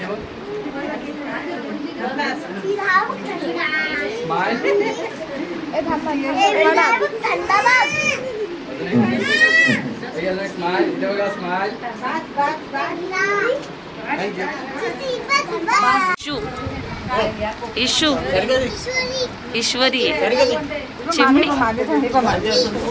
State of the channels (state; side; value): identical; both; correlation 1.00